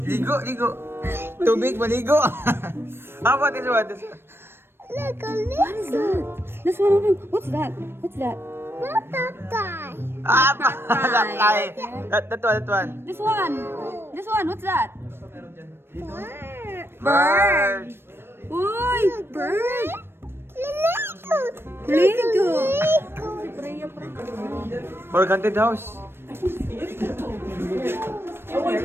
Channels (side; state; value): left; late; 0.11 ms